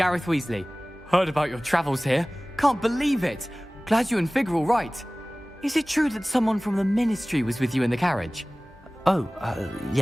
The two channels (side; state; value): both; normal; correlation 0.98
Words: Weasley. Heard about your travels here. Can't believe it. Glad you and Fig are all right. Is it true that someone from the ministry was with you in the carriage? Oh,